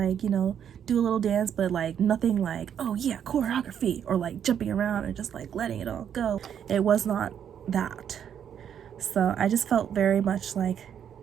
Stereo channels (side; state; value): left; quieter; 8.8 dB